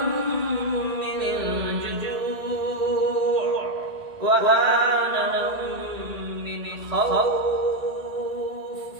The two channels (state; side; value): late; left; 1.8 ms